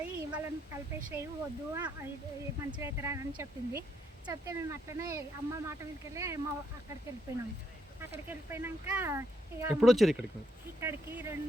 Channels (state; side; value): normal; both; correlation 0.76